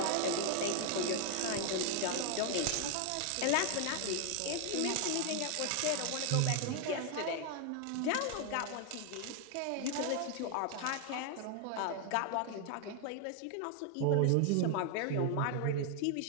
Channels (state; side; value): different; both; correlation 0.00